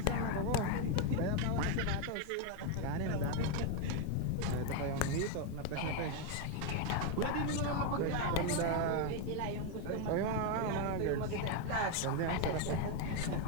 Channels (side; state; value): both; different; correlation 0.01